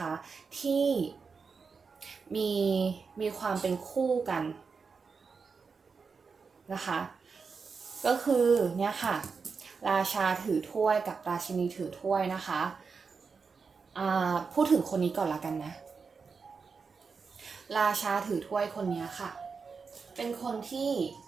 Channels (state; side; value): quieter; left; 5.2 dB